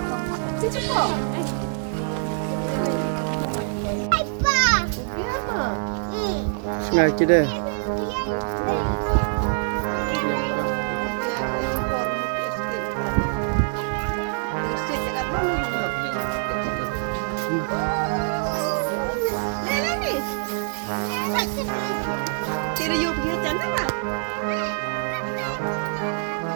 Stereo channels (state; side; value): silent; left; digital silence